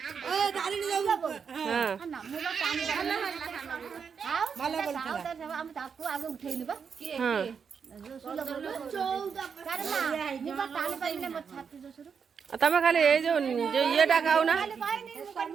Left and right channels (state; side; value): quieter; left; 6.4 dB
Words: तमें खाली ये जो ये खाऊ ना